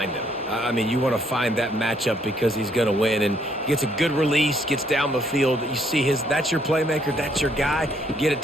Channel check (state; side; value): normal; both; correlation 0.69